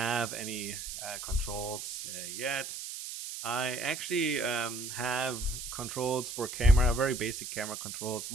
any controls yet. I actually have controls for camera, very basic camera controls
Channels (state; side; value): noise; right; hiss, 7 dB below the sound